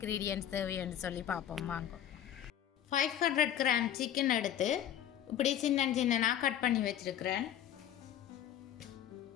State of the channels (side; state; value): right; quieter; 10.6 dB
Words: தேவைன்னு சொல்லி பார்ப்போம் வாங்க. 500 கிராம் சிக்கன் எடுத்து இப்படி சின்ன சின்னனாக கட் பண்ணி வச்சுருக்கிறேன்.